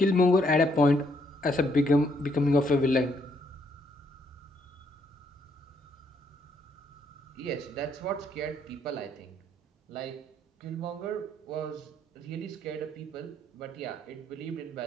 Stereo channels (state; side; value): normal; both; correlation 0.71